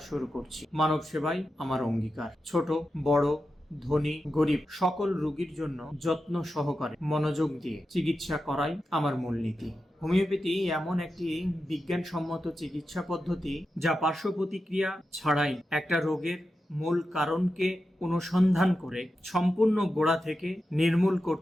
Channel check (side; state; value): both; normal; correlation 0.90